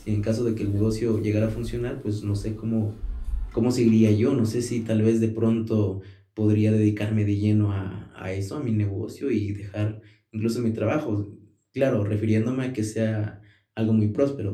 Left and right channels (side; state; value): both; identical; correlation 1.00